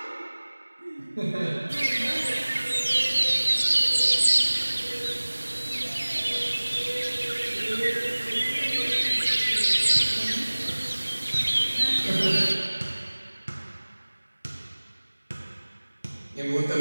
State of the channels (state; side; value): inverted; both; correlation -1.00